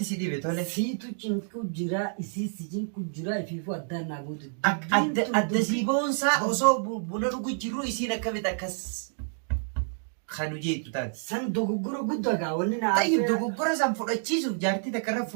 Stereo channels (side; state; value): left; silent; digital silence